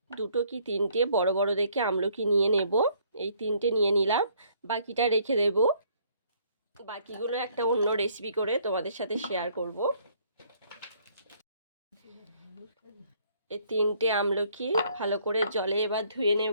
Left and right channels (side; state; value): both; inverted; correlation -0.64